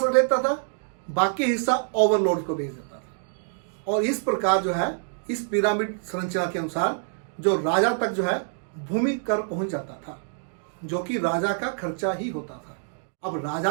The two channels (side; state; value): left; silent; digital silence